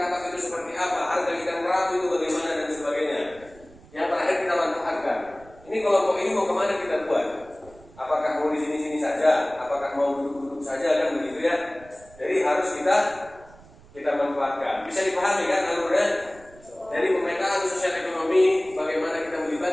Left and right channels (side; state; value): right; noise; rumble, 23 dB below the sound